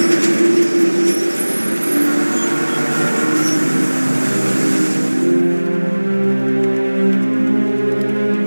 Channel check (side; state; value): both; inverted; correlation -1.00